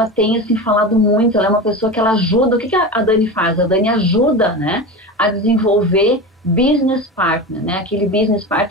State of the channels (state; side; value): normal; both; correlation 0.26